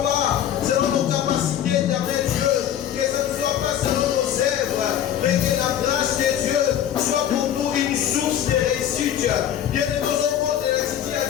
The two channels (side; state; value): right; quieter; 10.4 dB